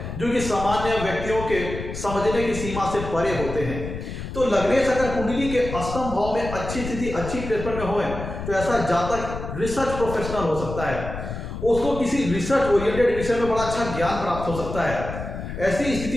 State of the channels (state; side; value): noise; left; rumble, 8 dB below the sound